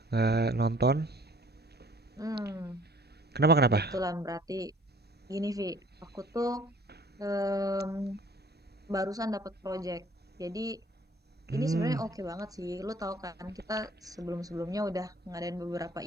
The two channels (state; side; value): normal; both; correlation 0.54